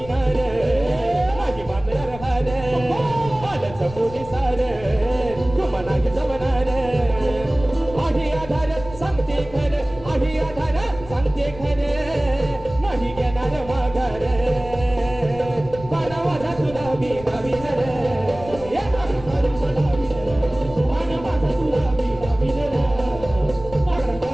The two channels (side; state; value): left; noise; rumble, 15 dB below the sound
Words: नाही मानणार हार. आलंच मुनी सार, तुम्हा नाही जमणार. आहे आधार, सांगते खरं, आहे आधार, सांगते खरं, नाही घेणार माघार. गुलाबी नवीन रे हे मागणं करून गुलाबी रे आहा माझा गुलाबी नवीन रे मागणं